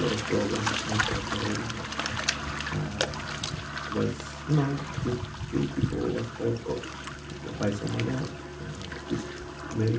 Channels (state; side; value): identical; both; correlation 1.00